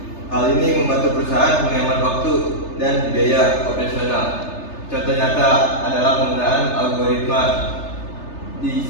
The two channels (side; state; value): right; late; 3.3 ms